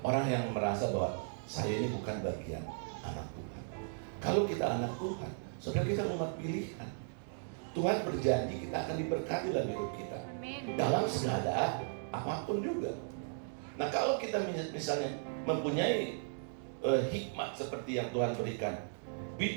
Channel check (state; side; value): silent; left; digital silence